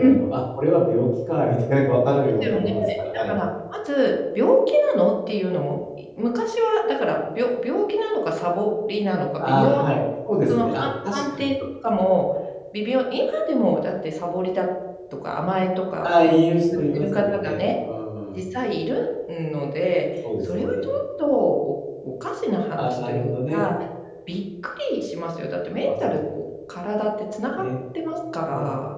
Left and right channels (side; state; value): both; identical; correlation 1.00